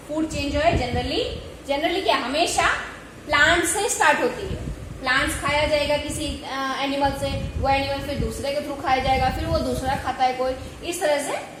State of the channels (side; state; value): both; identical; correlation 1.00